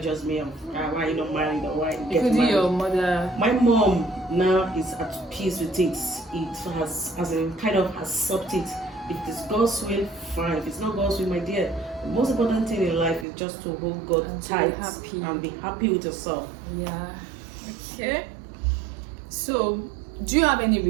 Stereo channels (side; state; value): left; drops out; at 13.2 s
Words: me of why you not married or why you get married. Your mother? My mom now is at peace with it. It has kind of accepted. If it's God's will, fine. If it's not God's will, my dear, the most important thing in life is just to hold God tight and be happy with yourself. Yeah. Okay. So, do you have any